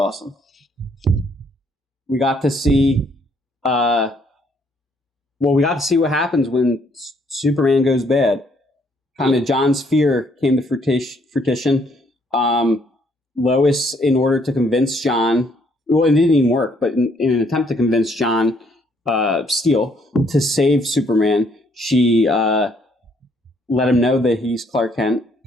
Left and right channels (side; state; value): both; normal; correlation 0.68